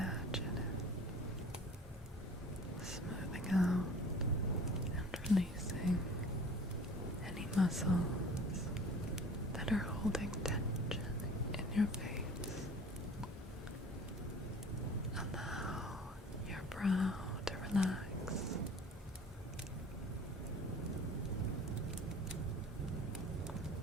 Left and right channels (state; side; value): normal; both; correlation 0.45